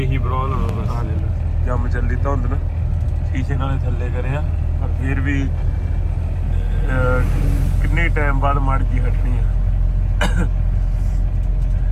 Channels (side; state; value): both; identical; correlation 1.00